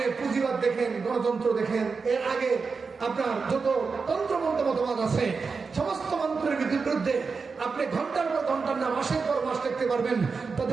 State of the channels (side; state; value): left; quieter; 4.9 dB